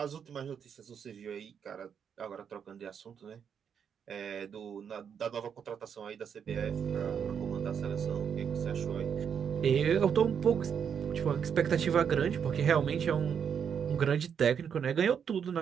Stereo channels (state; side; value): quieter; left; 7.5 dB